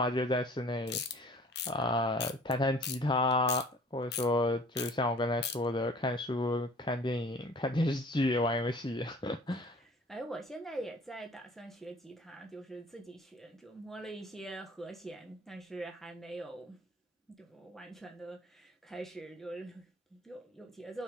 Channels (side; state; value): both; normal; correlation 0.49